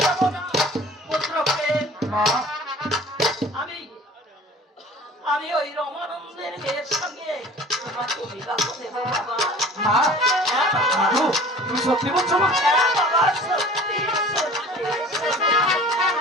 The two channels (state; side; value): normal; both; correlation 0.45